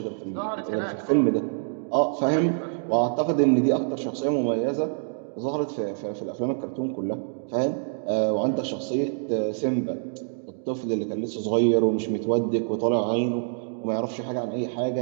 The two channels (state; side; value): silent; left; digital silence